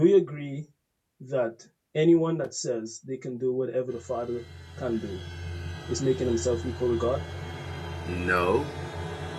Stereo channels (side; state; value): both; identical; correlation 1.00